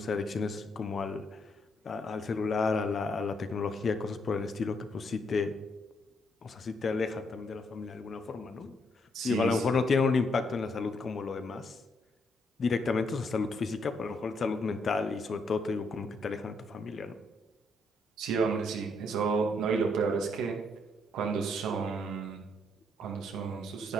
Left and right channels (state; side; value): normal; both; correlation 0.74